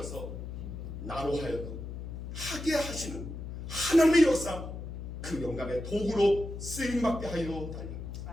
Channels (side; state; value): left; noise; hum, 8 dB below the sound